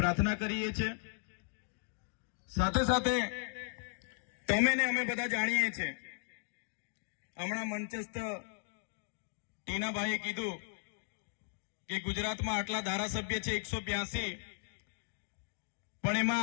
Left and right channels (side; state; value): right; silent; digital silence